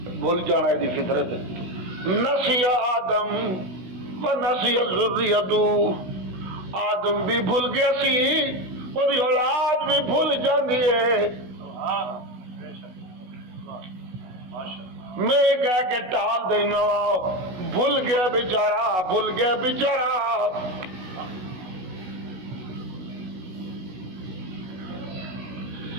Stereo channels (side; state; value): left; late; 16 ms